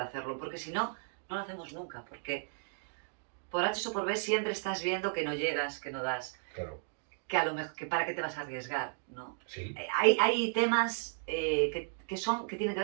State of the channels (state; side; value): silent; left; digital silence